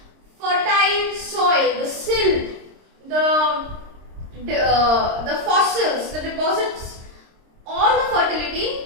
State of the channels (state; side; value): late; left; 26 ms